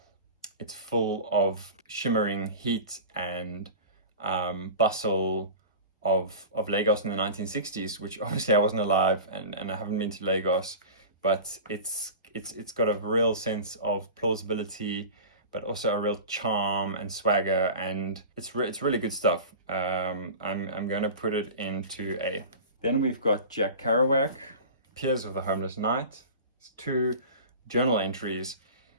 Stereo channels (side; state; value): both; inverted; correlation -0.33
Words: it's full of shimmering heat and bustle of Lagos in the 1960s, which obviously I wasn't alive and I haven't been to Lagos, but it's got a real sense of plausibility, but also a real charm and swagger, and it's really good stuff. I'm going to put it into A. Then we've got Jack Kerouac, Piers of the Homeless Knight. It's 2 journal entries.